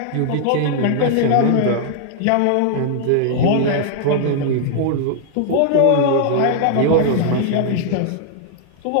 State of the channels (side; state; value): both; different; correlation -0.01